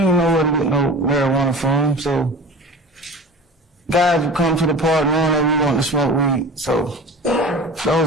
know where to get no marijuana from, so guys would come to the park knowing that we wanted to smoke weed. So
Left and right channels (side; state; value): both; normal; correlation 0.36